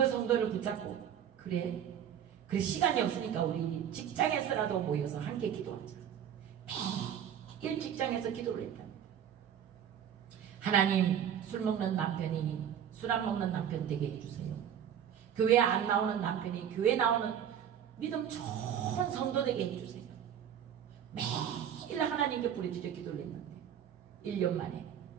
성도를 붙잡고, 그래 시간이 없으니까 우리 직장에서라도 모여서 함께 기도하자. 매일 직장에서 기도를 했답니다. 하나님, 술 먹는 남편이 술 안 먹는 남편 되게 해주세요. 교회 안 나오는 남편이 교회 나오는 믿음 좋은 성도 되게 해주세요. 매일 하나님께 부르짖어 기도를 했는데 1년 만에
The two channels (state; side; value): quieter; left; 9.3 dB